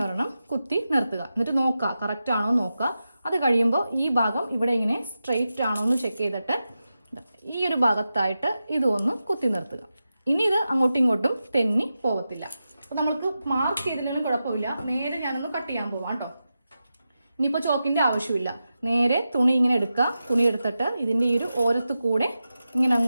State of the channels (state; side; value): inverted; both; correlation -0.91